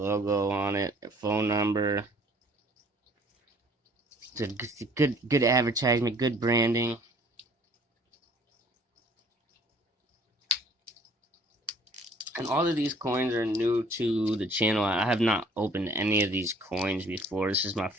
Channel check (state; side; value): normal; both; correlation 0.56